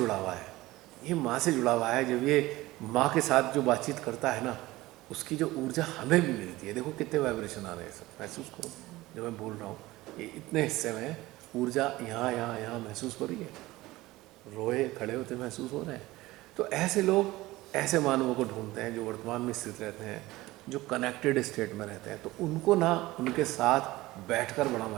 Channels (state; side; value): quieter; left; 18.6 dB